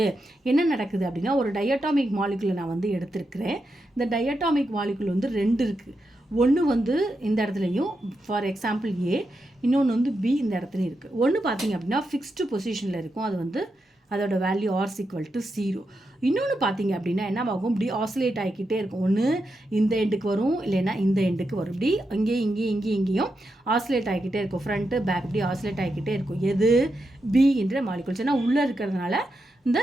என்ன நடக்குது அப்படின்னா ஒரு டயட்டாமிக் மாலிகுலை நான் வந்து எடுத்திருக்கிறேன். இந்த டயட்டாமிக் மாலிகுல் வந்து 2 இருக்குது. ஒன்று வந்து இந்த இடத்துலையும் ஃபார் எக்ஸாம்பிள் A, இன்னொன்று வந்து B இந்த இடத்துலையும் இருக்குது. ஒன்று பார்த்தீங்க அப்படின்னா ஃபிக்ஸ்டு பொசிஷனில் இருக்கும், அது வந்து அதோட வேல்யூ R = 0. இன்னொன்று பார்த்தீங்க அப்படின்னா என்ன ஆகும், இப்படி ஆசிலேட் ஆகிக்கிட்டே இருக்கும். ஒன்று இந்த எண்டுக்கு வரும், இல்லைன்னா இந்த எண்டுக்கு வரும். இப்படி இங்கேயும் ஆசிலேட் ஆகிக்கிட்டே இருக்கும். ஃப்ரண்ட்டு பேக் இப்படி ஆசிலேட் ஆகிக்கிட்டே இருக்கும். எது B என்ற மாலிகுல்ஸ். ஏன்னா உள்ளே இருக்கிறதுனால இந்த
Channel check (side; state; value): both; normal; correlation 0.86